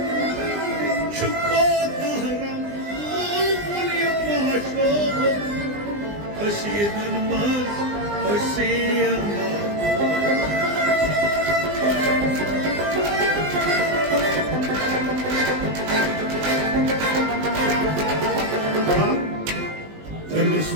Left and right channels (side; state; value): left; late; 20 ms